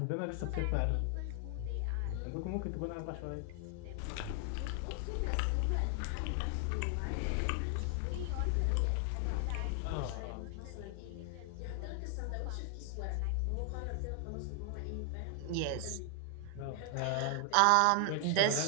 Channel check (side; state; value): both; different; correlation 0.00